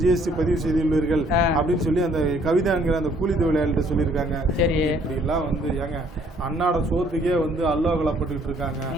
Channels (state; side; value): normal; both; correlation 0.63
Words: ஜிஎஸ்டி பதிவு செய்துள்ளீர்கள் அப்படின்னு சொல்லி அந்த கவிதாங்கிற அந்த கூலி தொழிலாளிகிட்ட சொல்லியிருக்காங்க. இப்படிலாம் வந்து ஏங்க அன்னாட சோத்துக்கே வந்து அல்லோகலப்பட்டுக்கிட்டு இருக்காங்க.